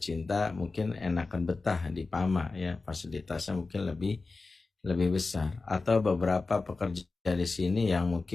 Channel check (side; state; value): right; quieter; 3.8 dB